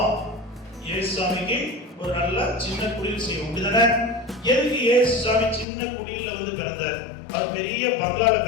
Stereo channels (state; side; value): drops out; right; at 5.7 s